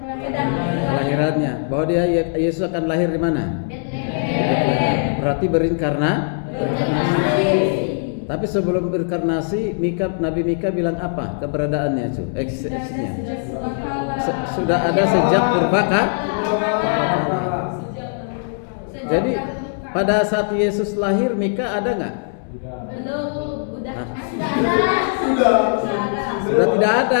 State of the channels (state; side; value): silent; right; digital silence